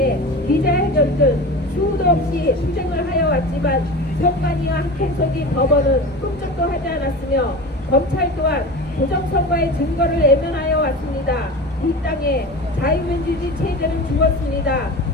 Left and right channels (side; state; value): both; normal; correlation 0.31